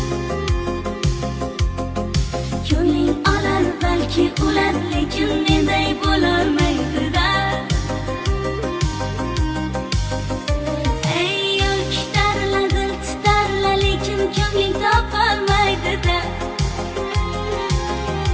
Ko'ngling olar balki ular, lekin menday bo'lolmaydi-da. Ey yo'l kitarla, dil titarla, lekin ko'ngling topolmaydi-da.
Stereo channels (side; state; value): both; identical; correlation 1.00